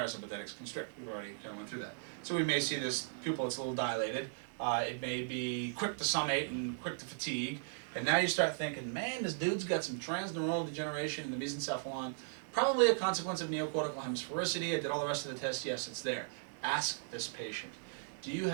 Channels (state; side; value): silent; left; digital silence